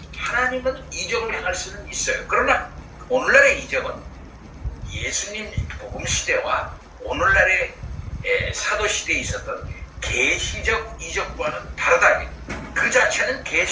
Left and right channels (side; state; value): both; identical; correlation 1.00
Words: 하나님은 이적을 행할 수는 있어요. 그러나 오늘날의 이적은 예수님 복음 시대와 오늘날의 사도시대에 있었던 계시적 이적과는 다르다. 그 자체는